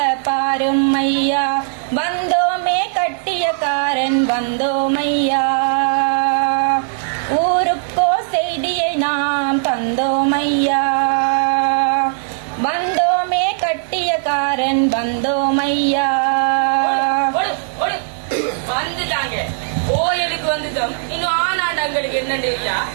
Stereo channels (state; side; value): silent; left; digital silence